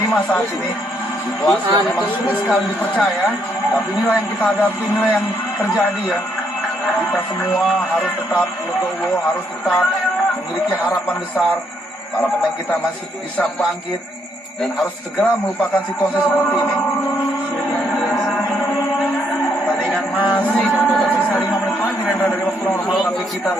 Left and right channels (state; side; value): normal; both; correlation 0.73